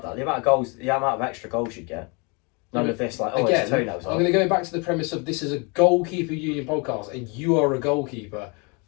that. The amount of goals, the amount of extra goals you'd get. None of this, like, again, it's toenails off. I'm going to go back to the premise of this is a goalkeeper union podcast, and you are a goalkeeper.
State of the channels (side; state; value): right; quieter; 31.3 dB